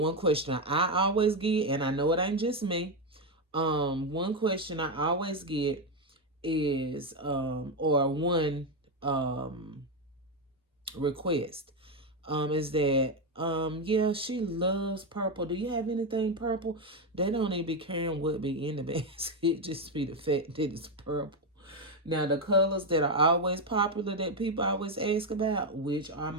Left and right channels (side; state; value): both; normal; correlation 0.07